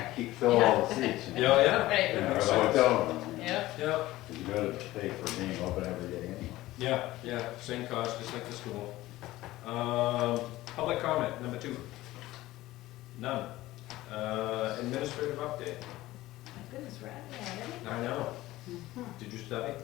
there. fill all the seats. Yeah, yeah. Right. You know, or the hotel room. Yep. Yeah. You gotta pay for being open every day anyway. Yeah, same cost, just like the school. Public comment, number 2. None. Administrative update. My goodness, we're out of here already? I know. Did you study?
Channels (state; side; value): quieter; right; 17.0 dB